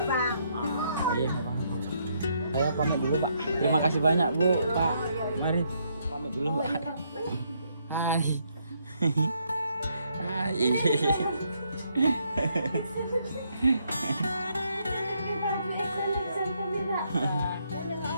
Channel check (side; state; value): both; inverted; correlation -0.74